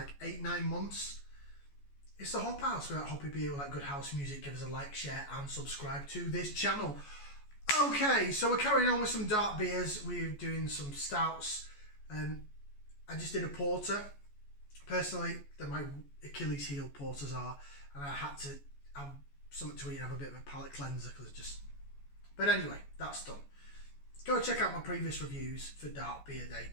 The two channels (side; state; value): right; late; 14 ms